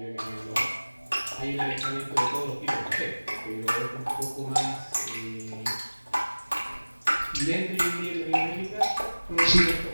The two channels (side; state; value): both; inverted; correlation -1.00